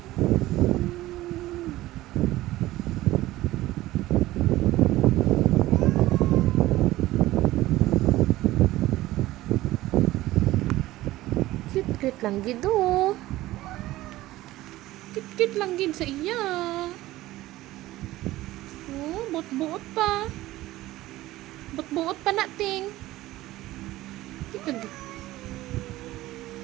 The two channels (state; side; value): quieter; left; 16.7 dB